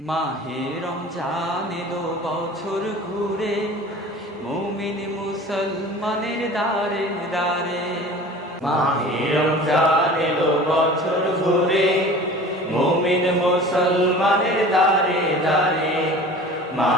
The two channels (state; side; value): normal; both; correlation 0.41